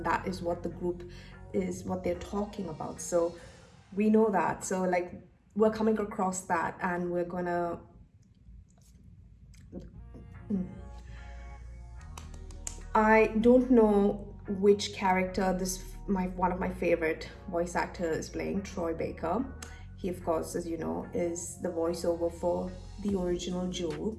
that is what the group is, what they're talking about. So we know that. So like, we're coming across that, and we're gonna I don't know which character one of my favorite voice actors is playing, Troy Baker. He, of course, as you know, is the voiceover for the original Joel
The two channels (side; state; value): both; identical; correlation 1.00